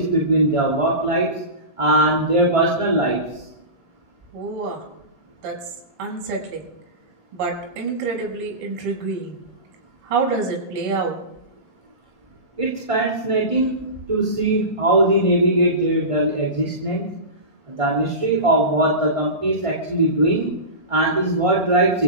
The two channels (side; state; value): left; late; 1.5 ms